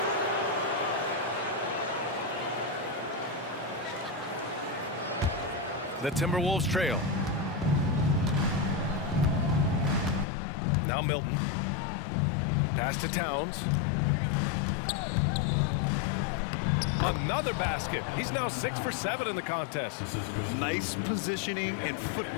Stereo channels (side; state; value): right; drops out; at 10.2 s